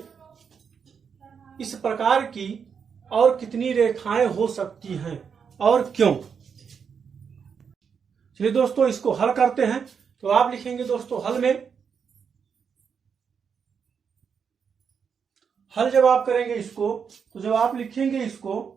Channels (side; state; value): left; quieter; 6.6 dB